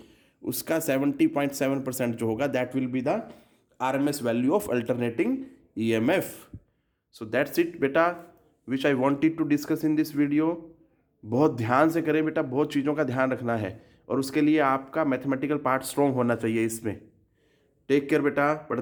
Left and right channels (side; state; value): both; identical; correlation 1.00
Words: उसका 70.7% जो होगा that will be the RMS value of alternating EMF. So that's it बेटा, which I wanted to discuss in this video. बहुत ध्यान से करें बेटा, बहुत चीज़ों का ध्यान रखना है और उसके लिए आपका मैथमेटिकल पार्ट स्ट्रॉन्ग होना चाहिए इसमें। टेक केयर बेटा,